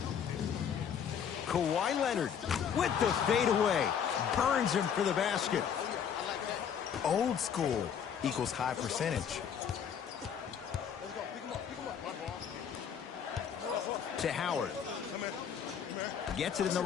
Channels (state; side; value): quieter; right; 7.9 dB